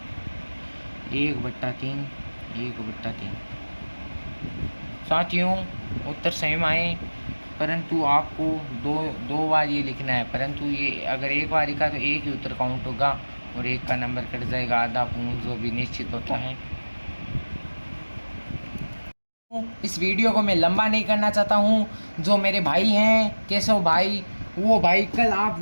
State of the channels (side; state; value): both; inverted; correlation -1.00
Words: 1/3 1/3। साथियों उत्तर सेम आए, परंतु आपको दो बार ये लिखना है। परंतु ये अगर एक बार लिखा तो एक ही उत्तर काउंट होगा और एक का नंबर कट जाएगा, आधा पूर्ण जो भी निश्चित होता है। इस वीडियो को मैं लंबा नहीं करना चाहता हूँ। जो मेरे भाई हैं केशव भाई, वो भाई कल आप